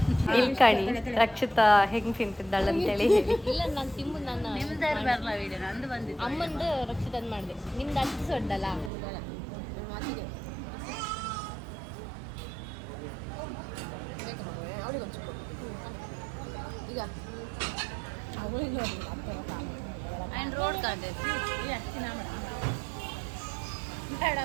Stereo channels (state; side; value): drops out; left; at 8.9 s